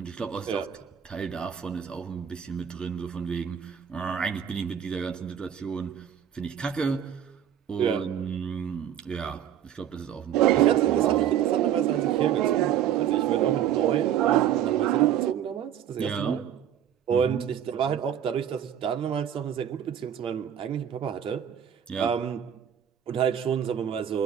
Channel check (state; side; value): quieter; left; 9.7 dB